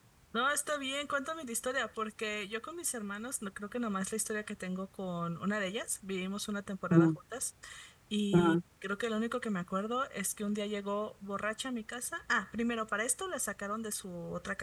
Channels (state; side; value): identical; both; correlation 1.00